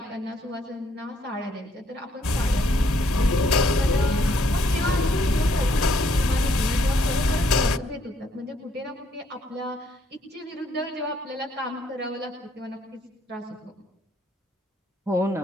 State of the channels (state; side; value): normal; both; correlation 0.69